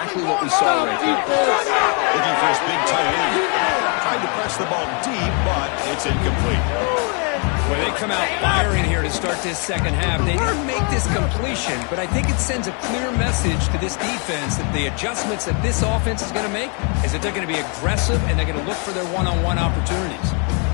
what we saw right here. Looking for his big tight end. Tried to press the ball deep, but it's incomplete. Well, they come out firing here to start this 2nd half. They didn't make this completion, but I think it sends a clear message to this defense that the adjustments that this offense is going to make is that they're going to be aggressive and they're going to look for their one-on-one opportunities.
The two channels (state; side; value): quieter; right; 36.8 dB